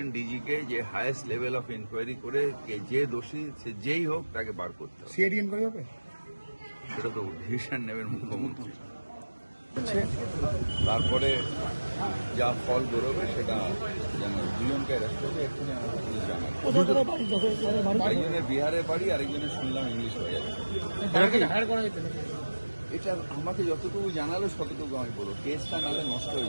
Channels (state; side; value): inverted; both; correlation -1.00